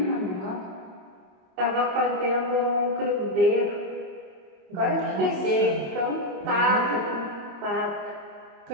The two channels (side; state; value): left; late; 27 ms